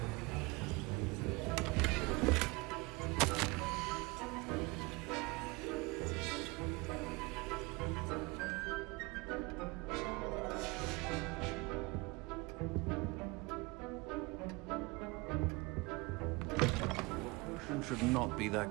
Should not be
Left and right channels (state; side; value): quieter; left; 25.2 dB